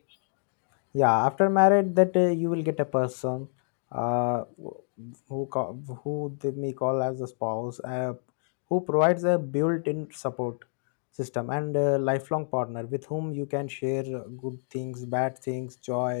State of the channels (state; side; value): silent; right; digital silence